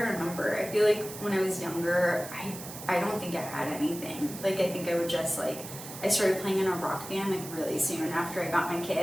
remember. I feel like when I was younger, I don't think I had anything. Like I think I would just like, I started playing in a rock band like really soon after I got my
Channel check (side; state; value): right; noise; hiss, 12 dB below the sound